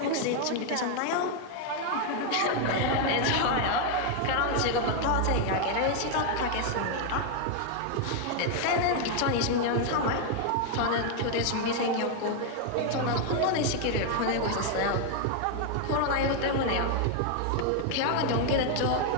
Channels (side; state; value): both; different; correlation 0.00